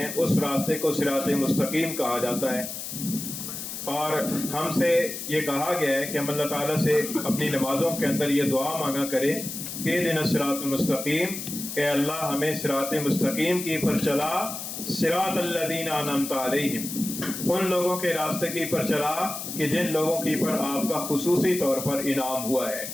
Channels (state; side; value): noise; left; hiss, 7 dB below the sound